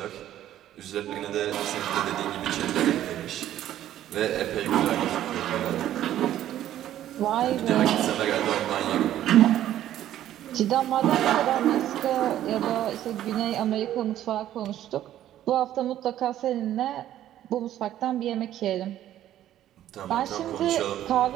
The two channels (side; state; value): left; quieter; 12.3 dB